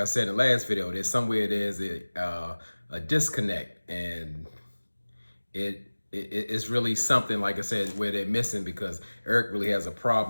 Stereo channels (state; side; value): inverted; both; correlation -1.00